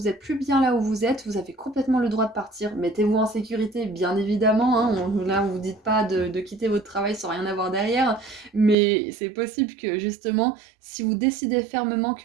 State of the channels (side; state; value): left; drops out; at 8.8 s